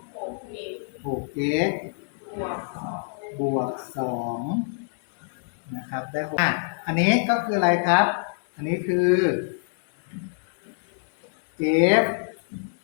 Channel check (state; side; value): silent; right; digital silence